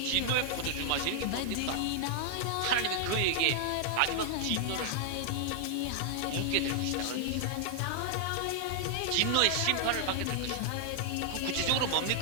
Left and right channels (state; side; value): different; both; correlation -0.01